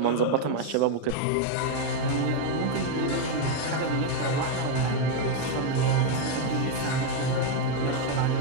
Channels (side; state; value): both; different; correlation 0.01